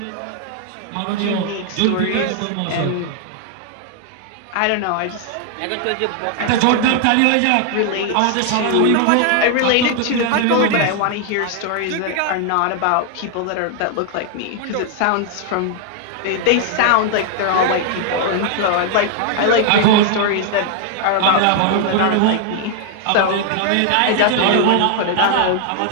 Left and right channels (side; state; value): both; different; correlation 0.00